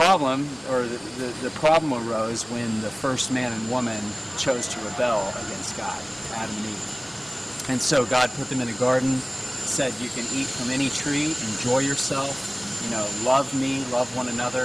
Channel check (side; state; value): both; identical; correlation 1.00